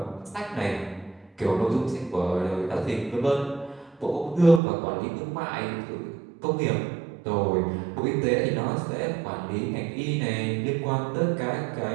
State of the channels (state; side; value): drops out; left; at 4.6 s